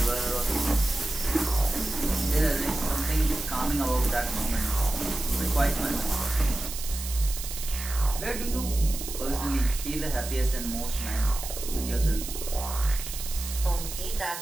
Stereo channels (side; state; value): right; noise; hiss, 8 dB below the sound